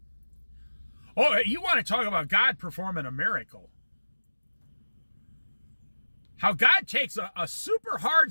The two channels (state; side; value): inverted; both; correlation -1.00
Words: Oh, you want to talk about God performing a miracle. How God takes a super